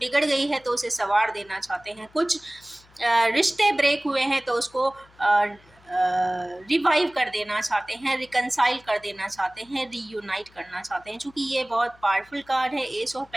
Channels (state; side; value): noise; left; hum, 28 dB below the sound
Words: गई है तो उसे संवार देना चाहते हैं, कुछ रिश्ते ब्रेक हुए हैं तो उसको रिवाइव कर देना चाहते हैं, रिकनसाइल कर देना चाहते हैं, रीयूनाइट करना चाहते हैं। चूँकि ये बहुत पावरफुल कार्ड है, एस ऑफ